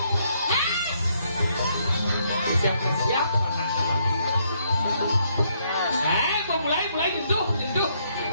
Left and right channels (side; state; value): both; inverted; correlation -0.72